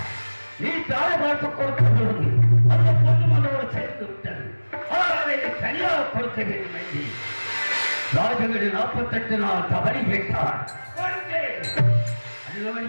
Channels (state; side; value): inverted; both; correlation -1.00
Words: நீ தாய் பார்த்து கொடுக்க சொல்லுங்க. அந்த பொண்ணு மனோடு சேர்ந்து விட்டது. ஆனால் அதை தனியாக கொடுக்க வேண்டும் என்று ராஜகடி 48 நாள் தவறி கேட்டார்.